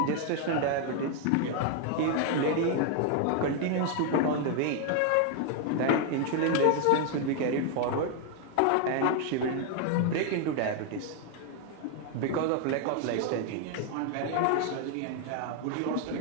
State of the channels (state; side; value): different; both; correlation 0.01